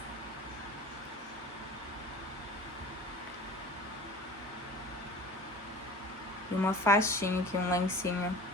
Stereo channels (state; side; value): normal; both; correlation 0.40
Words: E uma faixinha aqui, um lencinho,